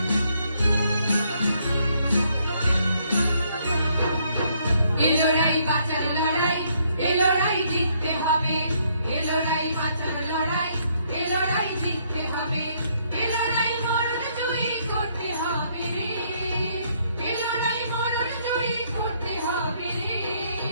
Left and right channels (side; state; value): both; inverted; correlation -0.70